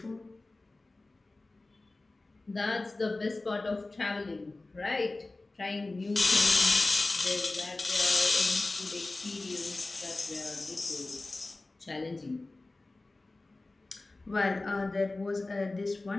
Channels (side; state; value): right; quieter; 3.1 dB